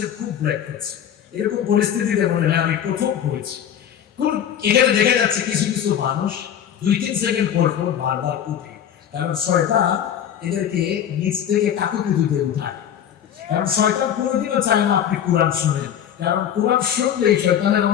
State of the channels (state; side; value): quieter; right; 9.6 dB